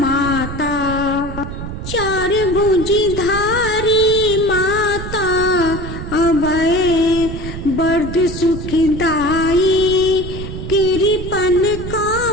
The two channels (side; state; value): right; noise; rumble, 8 dB below the sound